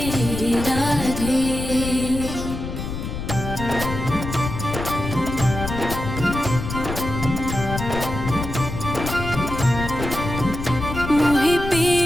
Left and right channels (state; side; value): noise; left; rumble, 6 dB below the sound